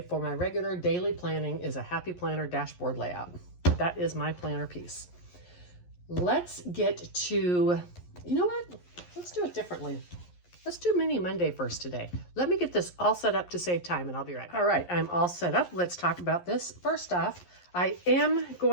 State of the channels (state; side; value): late; right; 11 ms